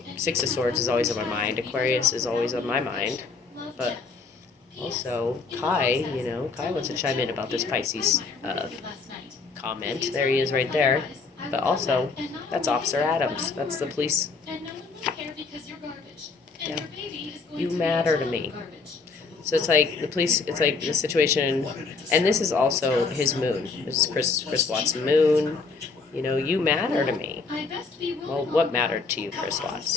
Six of Swords is always on my mind. Aquarius is always on my mind, but also Kai. Kai wants to chime in about this Pisces comment. There he is, right there. But also, that's Officer Adams. That's the police. Yeah. You matter to me. So it's like the police, it's like the situation, and this is also his moon. This is Chris Watts' moon. You matter to me. Well, what mattered to you, Chris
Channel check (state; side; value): quieter; right; 4.4 dB